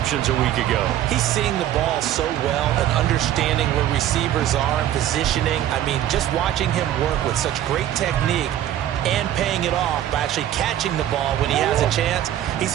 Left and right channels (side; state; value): left; quieter; 12.0 dB